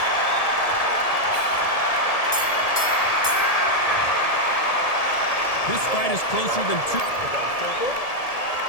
This fight is closer than two.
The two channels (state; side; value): late; right; 1.7 ms